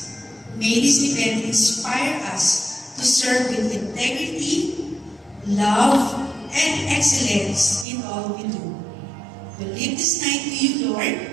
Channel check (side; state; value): left; drops out; at 7.9 s